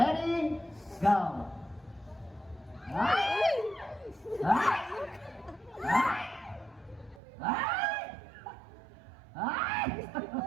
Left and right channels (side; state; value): left; drops out; at 7.2 s